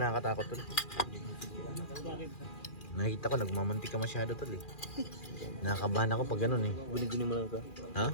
tol? Bakit? Nakikita ko nagmamantika masyado tol eh. Nakakabahan ako pag ganun eh. Guni-guni mo lang ka. Ha?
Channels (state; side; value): late; right; 2.4 ms